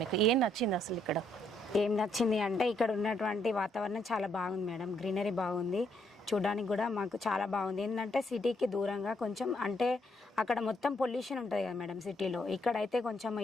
మీకు ఏం నచ్చింది అసలు ఇక్కడ? ఏం నచ్చింది అంటే ఇక్కడ ఉన్నటువంటి వాతావరణం చాలా బాగుంది మేడం. గ్రీనరీ బాగుంది, చూడడానికి కూడా మాకు చాలా బాగుంది. ఏంటంటే సిటీకి దూరంగా కొంచెం, అంటే అక్కడ మొత్తం పొల్యూషన్ ఉంటుంది కదా మేడం సిటీలో. ఇక్కడైతే కొంచెం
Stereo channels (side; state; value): both; normal; correlation 0.73